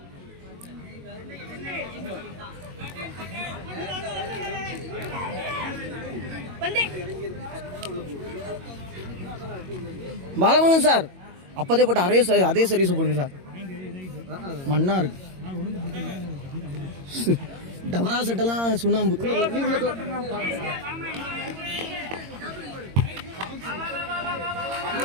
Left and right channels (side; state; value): left; late; 22 ms